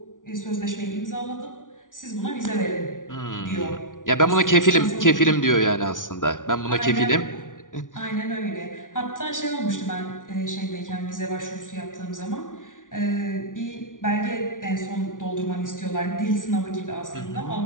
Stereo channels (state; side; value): late; right; 0.88 ms